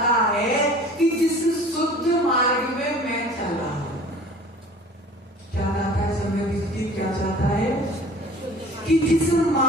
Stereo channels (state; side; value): normal; both; correlation 0.45